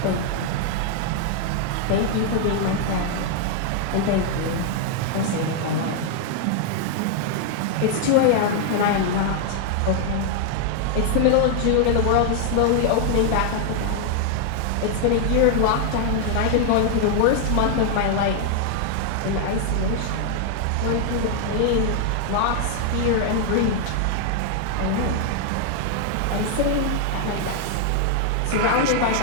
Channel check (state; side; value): different; both; correlation 0.00